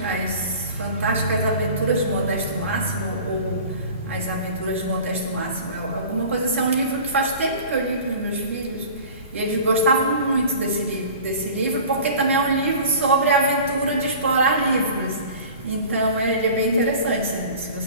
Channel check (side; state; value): both; inverted; correlation -0.41